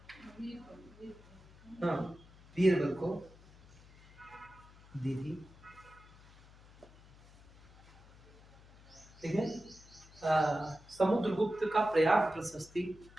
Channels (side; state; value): left; noise; hum, 23 dB below the sound